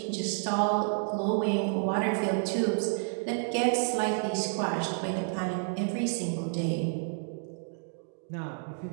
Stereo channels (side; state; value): left; silent; 58 dB below the other